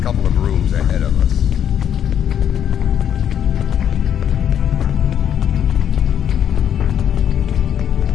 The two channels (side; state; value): right; quieter; 9.3 dB